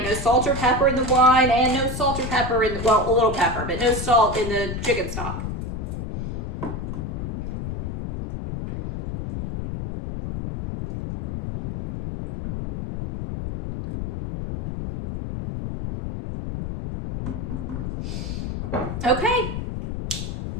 No salt or pepper in the wine, and no salt or pepper in the, well, a little pepper, but no salt in the chicken stock. Okay,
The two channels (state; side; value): noise; left; rumble, 5 dB below the sound